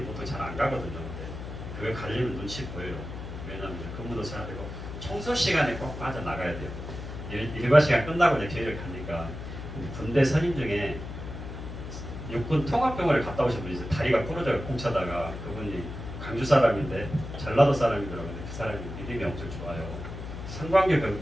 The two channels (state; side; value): noise; left; hum, 9 dB below the sound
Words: 보통 잘 안 가거든요. 근데 그걸 가려면 눈치 보여요. 왜냐하면 근무도 해야 되고 청소 시간에 꼭 빠져나가야 돼요. 일과 시간 끝나고 이제 교회를 가니까 군대 선임 중에 육군 통합병원을 갔다 오신 분이 있어요. 다리가 부러져서 공차다가 그분이 광주 사람인데 전라도 사람이더라고요. 그 사람이 믿음이 엄청 좋아요.